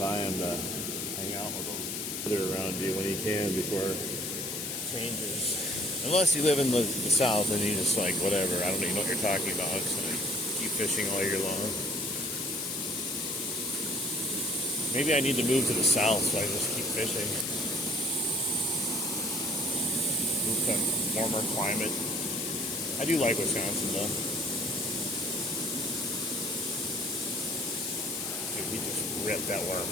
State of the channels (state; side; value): noise; left; hiss, 4 dB below the sound